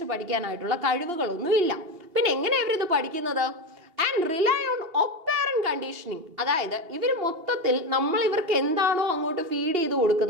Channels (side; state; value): left; late; 2.8 ms